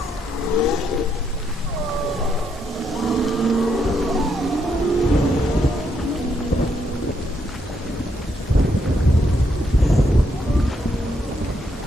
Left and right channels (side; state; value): both; normal; correlation 0.77